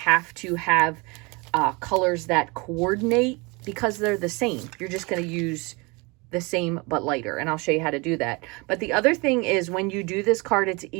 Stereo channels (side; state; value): left; quieter; 27.6 dB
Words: to have colors that coordinate because they're the same. You're just going to use the same but lighter, and I'll show you how to do that. But the other thing is when you do this card, it's